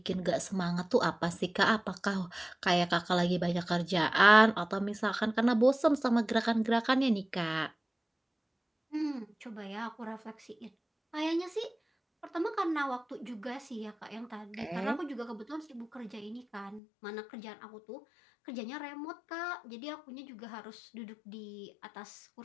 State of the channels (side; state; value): right; drops out; at 16.8 s